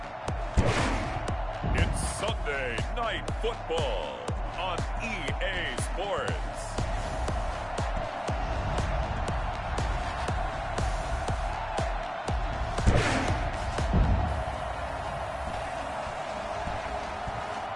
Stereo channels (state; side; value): identical; both; correlation 1.00